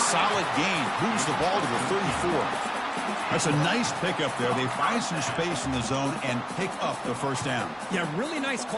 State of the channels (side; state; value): both; identical; correlation 1.00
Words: gain. Moves the ball to the 34. That's a nice pickup there. They find some space in the zone and pick up the first down. Yeah, really nice